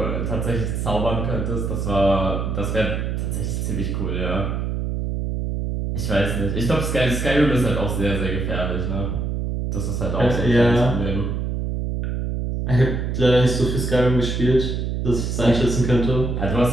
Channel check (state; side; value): noise; right; hum, 2 dB below the sound